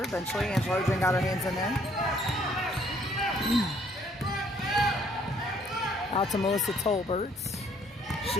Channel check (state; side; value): normal; both; correlation 0.64